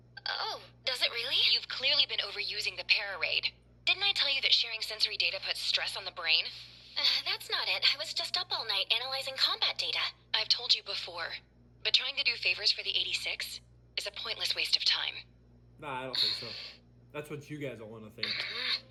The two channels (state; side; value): identical; both; correlation 1.00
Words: Oh, does it really? You've clearly been overusing the Pararaid. Didn't I tell you that sharing sensory data puts stress on the brain? That's not it. I was just up all night analyzing combat data. I've told you before, but trying to do favors for the 86 is a pointless waste of time. Nah, I don't think so. That's what you guys all want to think.